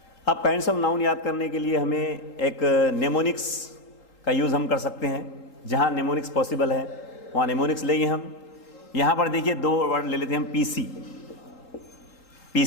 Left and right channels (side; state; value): right; late; 3.8 ms